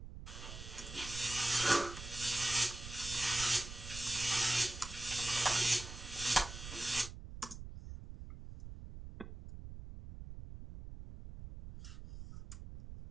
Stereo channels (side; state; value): right; noise; rumble, 11 dB below the sound